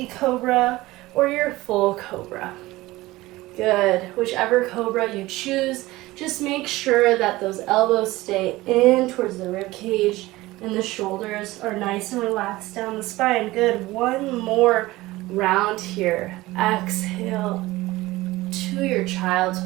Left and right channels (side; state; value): left; quieter; 18.8 dB